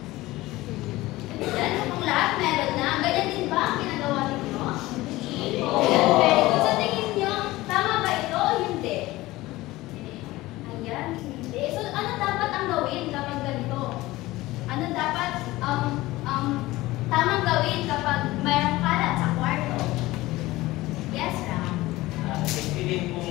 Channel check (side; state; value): right; quieter; 18.5 dB